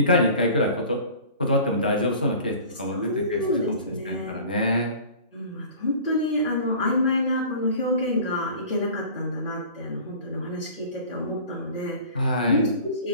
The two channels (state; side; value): inverted; both; correlation -0.43